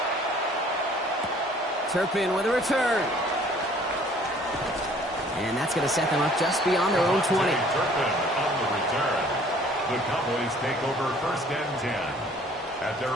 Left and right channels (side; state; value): both; normal; correlation 0.55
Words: Turpin with a return. And that's going to set them up just beyond their own 20. Turpin on the return. The Cowboys take over 1st and 10 at their